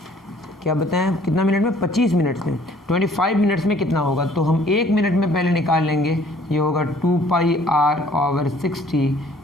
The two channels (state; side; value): normal; both; correlation 0.57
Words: क्या बताएं कितना मिनट में? 25 मिनट्स में। 25 मिनट्स में कितना होगा? तो हम 1 मिनट में पहले निकाल लेंगे। ये होगा 2πr/60।